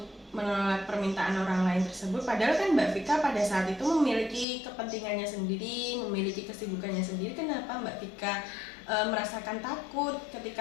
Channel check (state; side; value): drops out; right; at 4.5 s